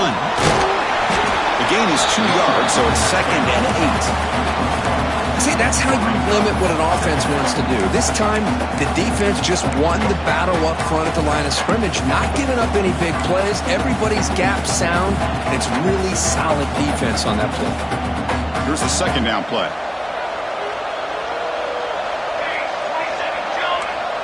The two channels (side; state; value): both; identical; correlation 1.00